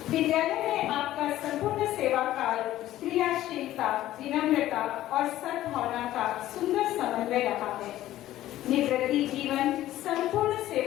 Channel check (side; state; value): right; quieter; 14.2 dB